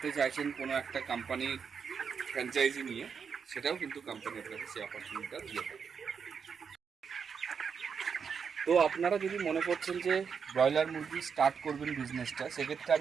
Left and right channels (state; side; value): quieter; left; 6.4 dB